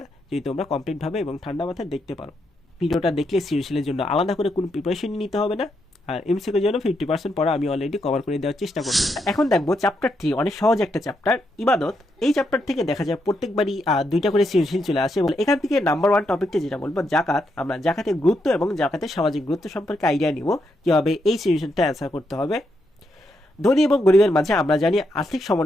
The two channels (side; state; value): both; normal; correlation 0.80